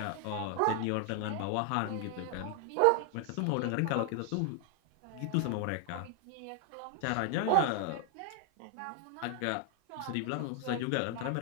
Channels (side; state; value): both; different; correlation 0.00